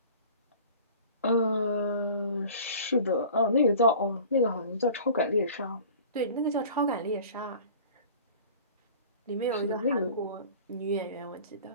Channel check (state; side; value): inverted; both; correlation -0.43